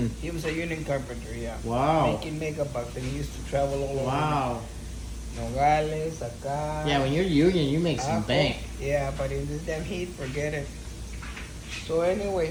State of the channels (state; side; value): identical; both; correlation 1.00